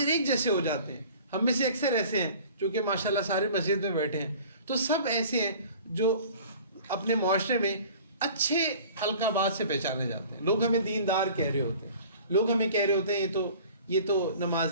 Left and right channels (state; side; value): inverted; both; correlation -0.45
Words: ایک جیسے ہو جاتے ہیں. ہم میں سے اکثر ایسے ہیں جو کہ ماشاءاللہ سارے مسجد میں بیٹھے ہیں, تو سب ایسے ہیں جو اپنے معاشرے میں اچھے القابات سے پہچانے جاتے ہیں. لوگ ہمیں دیندار کہہ رہے ہوتے ہیں, لوگ ہمیں کہہ رہے ہوتے ہیں یہ تو